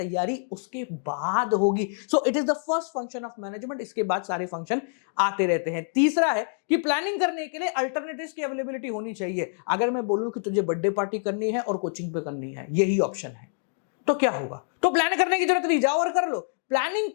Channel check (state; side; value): silent; right; digital silence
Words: उसके बाद होगी। So it is the first function of management. इसके बाद सारे फंक्शन आते रहते हैं। तीसरा है कि प्लानिंग करने के लिए अल्टरनेटिव्स की अवेलेबिलिटी होनी चाहिए। अगर मैं बोलूं कि तुझे बर्थडे पार्टी करनी है और कोचिंग पे करनी है, यही ऑप्शन है, तो क्या होगा? तो प्लान करने की जरूरत नहीं, जाओ और कर लो। प्लानिंग